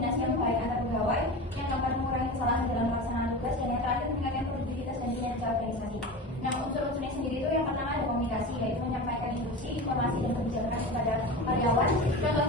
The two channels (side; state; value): both; normal; correlation 0.29